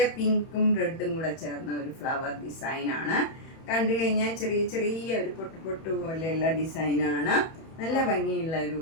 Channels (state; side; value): late; right; 31 ms